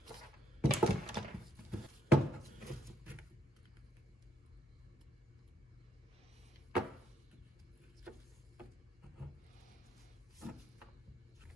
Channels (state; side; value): normal; both; correlation 0.72